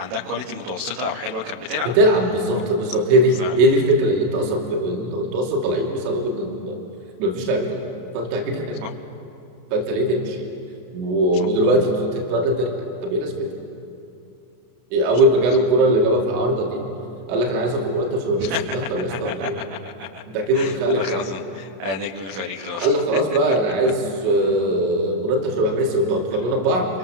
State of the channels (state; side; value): late; left; 33 ms